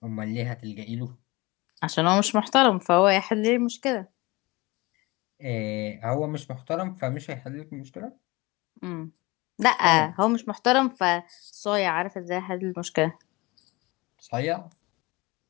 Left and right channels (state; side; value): quieter; right; 23.2 dB